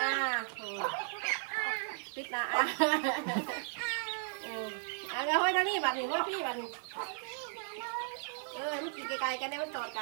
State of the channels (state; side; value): silent; left; 54 dB below the other